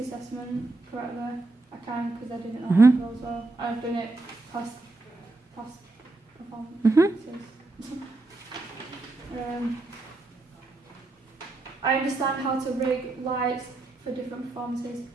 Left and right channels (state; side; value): quieter; left; 3.1 dB